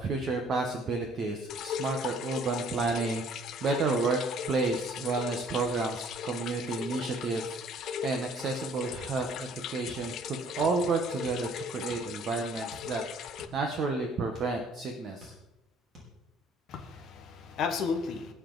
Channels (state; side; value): normal; both; correlation 0.57